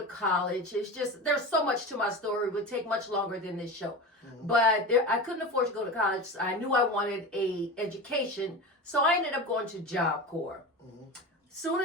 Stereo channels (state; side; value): normal; both; correlation 0.27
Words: college. It's just, there's so much to my story. It would take much longer than this show. But I couldn't afford to go to college. I knew I wanted a education. So I ended up going to Job Corps. Soon